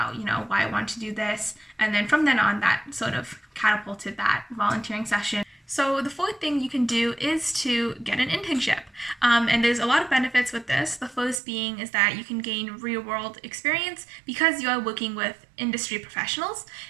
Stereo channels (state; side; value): drops out; left; at 11.4 s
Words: why I wanted to do this. And then from then on, that sort of catapulted that volunteering session. So the fourth thing you can do is to get an internship. And there's a lot of benefits with this. The first being is that you can gain real-world experience because you are working with industry professionals.